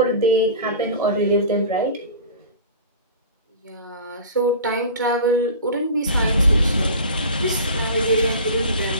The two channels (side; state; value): both; inverted; correlation -0.36